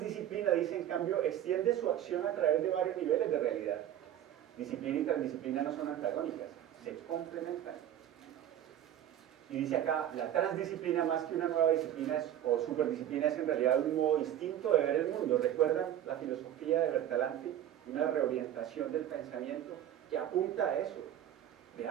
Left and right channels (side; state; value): left; quieter; 11.2 dB